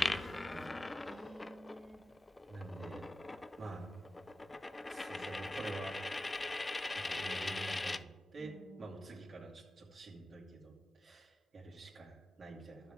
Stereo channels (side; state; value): both; normal; correlation 0.94